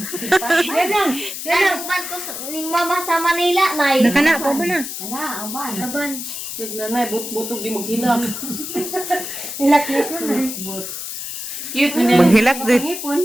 Yan ang ko ni Mama sa Manila, Nay. Nakana pa ba na? Laban. Sige na, butog di maghilak. Hilak-hilak na. Cute na Maghilak din.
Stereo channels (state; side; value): noise; left; hiss, 7 dB below the sound